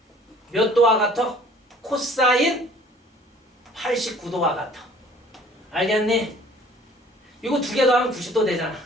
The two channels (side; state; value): both; normal; correlation 0.52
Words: 몇 도와 같아? 코사인 89도와 같아. 알겠니? 이거 두 개 더하면 90도 되잖아.